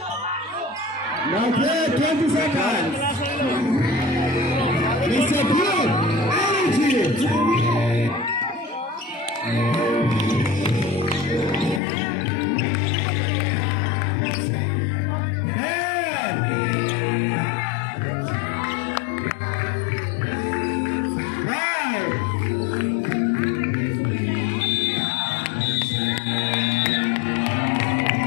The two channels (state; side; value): drops out; right; at 11.8 s